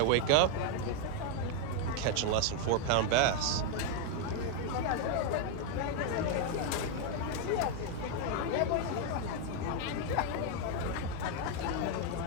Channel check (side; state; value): both; different; correlation 0.01